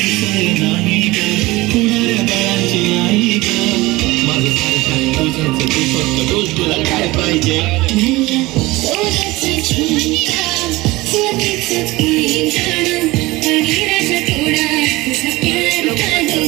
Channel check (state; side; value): quieter; left; 20.4 dB